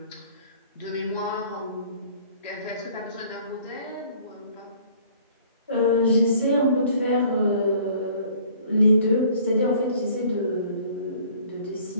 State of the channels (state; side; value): inverted; both; correlation -0.54